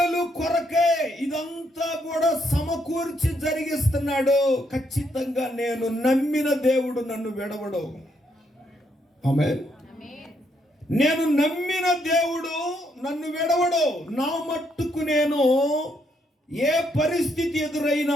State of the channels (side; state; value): both; normal; correlation 0.74